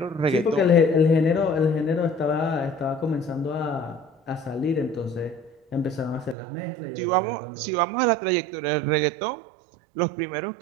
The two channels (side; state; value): left; drops out; at 6.4 s